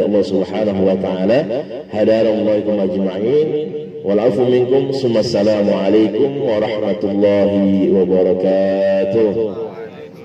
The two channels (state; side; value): identical; both; correlation 1.00